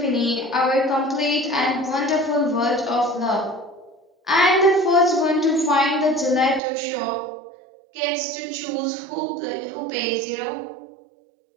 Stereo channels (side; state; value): left; drops out; at 6.6 s